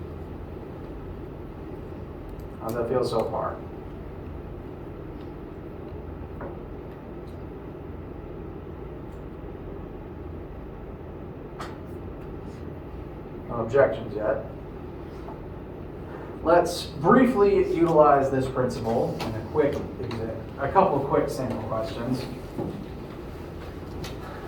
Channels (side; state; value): both; identical; correlation 1.00